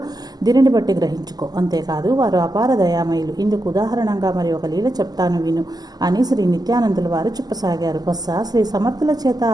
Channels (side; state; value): left; late; 0.19 ms